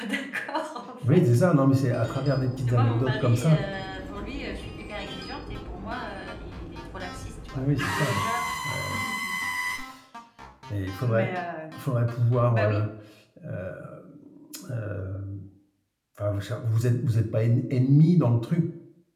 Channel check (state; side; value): identical; both; correlation 1.00